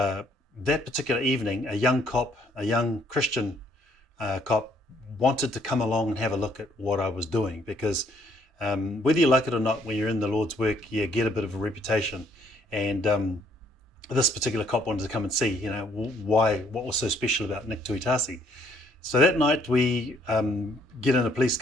particular evening, a young cop, a young Christian cop, wanted to come along and have a look at what I was doing, because whether you like it or not, when you're in the Lord's work, you get a bit of a reputation. And this particular cop wanted to come and see, what was so special about Nick Tuitasi. So that night we get in a police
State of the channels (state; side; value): normal; both; correlation 0.66